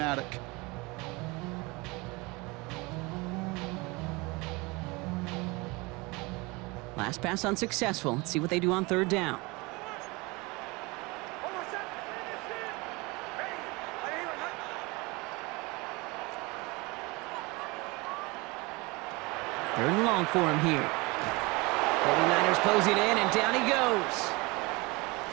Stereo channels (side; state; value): left; quieter; 25.1 dB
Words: Last pass unsuccessful. Let's see what they do on 3rd down. Third and long for him here. 49ers closing in, and down he goes.